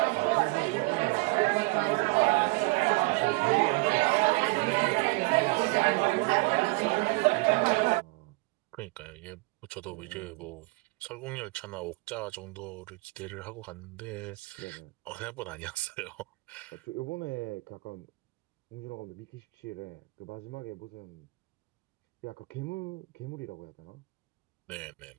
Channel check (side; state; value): left; quieter; 25.7 dB